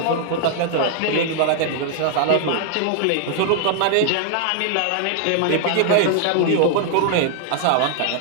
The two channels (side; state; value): both; different; correlation 0.00